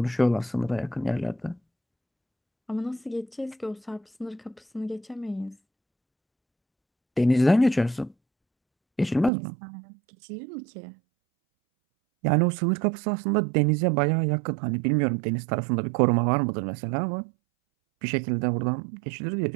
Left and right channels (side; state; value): left; drops out; at 9.3 s